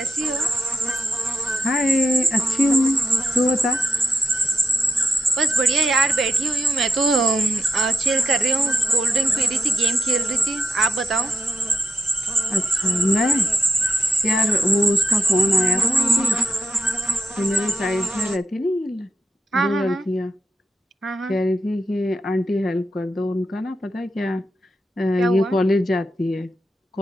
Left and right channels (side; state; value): both; normal; correlation 0.83